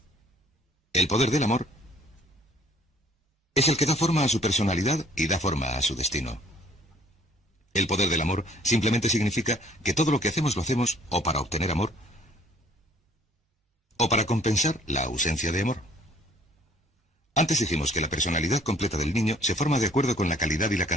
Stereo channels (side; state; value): both; normal; correlation 0.56